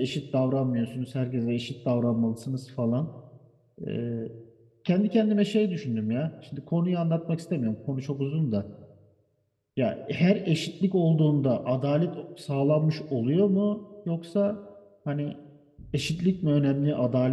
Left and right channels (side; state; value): both; identical; correlation 1.00